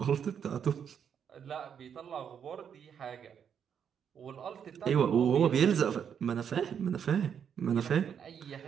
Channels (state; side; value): quieter; left; 7.9 dB